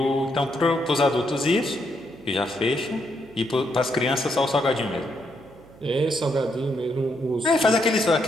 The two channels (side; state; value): right; noise; hum, 24 dB below the sound